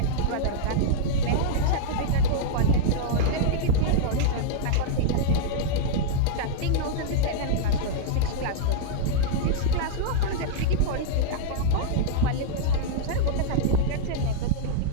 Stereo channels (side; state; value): both; different; correlation -0.02